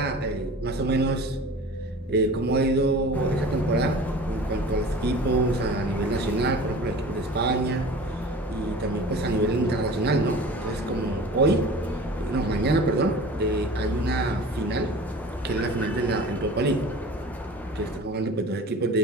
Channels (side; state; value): both; normal; correlation 0.40